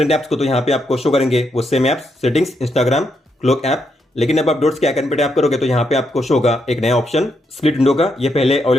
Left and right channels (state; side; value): normal; both; correlation 0.79